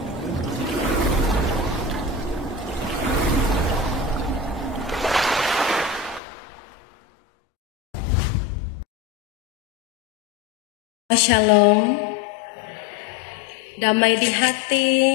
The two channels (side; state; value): right; drops out; at 6.2 s